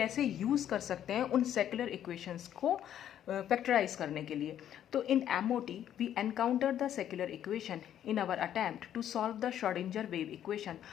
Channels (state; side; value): quieter; right; 10.5 dB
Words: यूज़ कर सकते हैं उन सेक्युलर इक्वेशंस को फैक्टराइज करने के लिए। तो in MOT we encounter the secular equation in our attempt to solve the Schrodinger wave equation